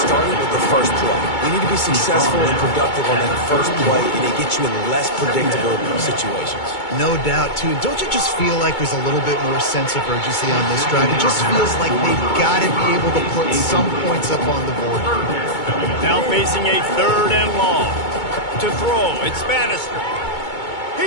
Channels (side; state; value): right; late; 2.2 ms